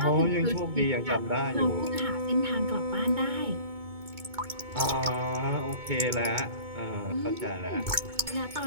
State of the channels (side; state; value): left; late; 2.2 ms